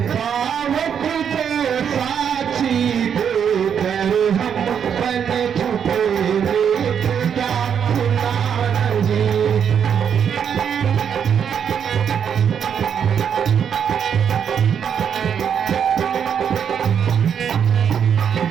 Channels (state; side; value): quieter; left; 7.9 dB